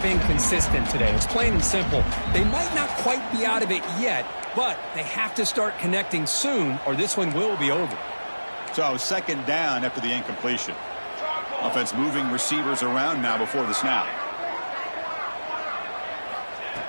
been consistent today. It's plain and simple. They might not quite be out of it yet, but they have to start connecting soon or this one will be over. So second down after the incompletion. Offense moving receivers around now before the snap.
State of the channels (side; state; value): both; inverted; correlation -1.00